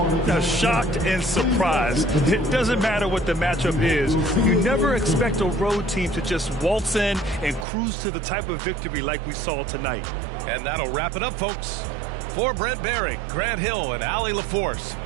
Now, shocked and surprised. It doesn't matter what the matchup is. You never expect a road team to just waltz in and cruise to the type of victory like we saw tonight. And that'll wrap it up, folks. For Brent Behring, Grant Hill, and Allie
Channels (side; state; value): left; drops out; at 7.7 s